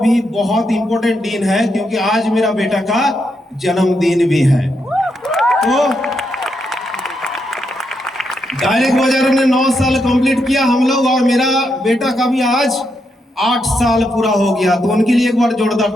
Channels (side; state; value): both; normal; correlation 0.82